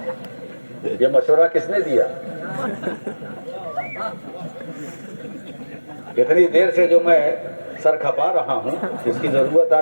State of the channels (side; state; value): both; inverted; correlation -1.00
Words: یہ مشورہ کس نے دیا؟ اتنی دیر سے جو میں سر کھپا رہا ہوں اس کی ضرورت